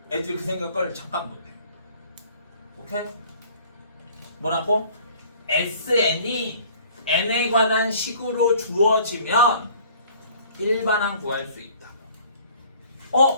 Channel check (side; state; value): both; inverted; correlation -0.52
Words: 애들이 그 생각을 잠깐 못해. 오케이? 뭐라고? SN이 n에 관한 식으로 주어지면 일반항 구할 수 있다.